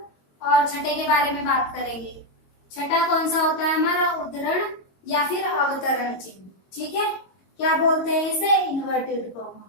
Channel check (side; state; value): right; late; 22 ms